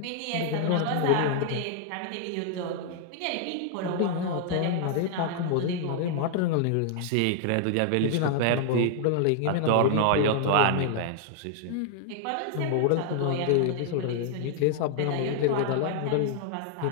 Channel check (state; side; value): different; both; correlation 0.00